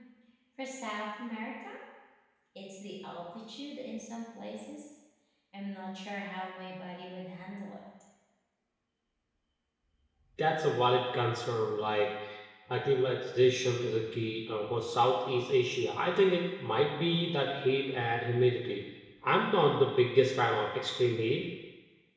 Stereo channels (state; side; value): identical; both; correlation 1.00